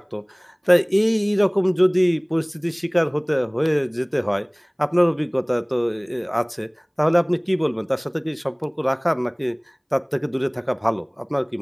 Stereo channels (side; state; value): both; identical; correlation 1.00